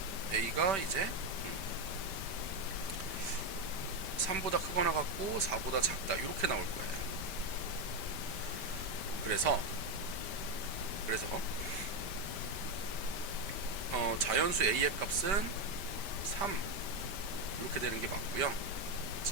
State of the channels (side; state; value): left; late; 5.1 ms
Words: a가 이제 3보다 크거나 같고 4보다 작다 이렇게 나올 거예요. 그래서 자연수 a의 값은 3 이렇게 되는 게 맞고요.